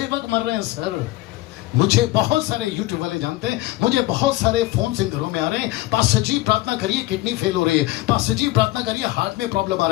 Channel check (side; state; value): right; quieter; 18.0 dB